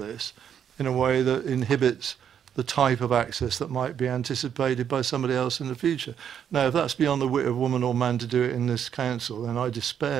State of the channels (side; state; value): left; quieter; 8.7 dB